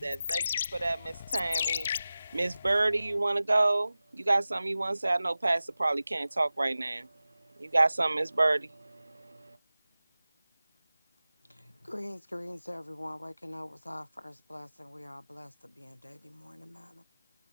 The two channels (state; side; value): inverted; both; correlation -0.96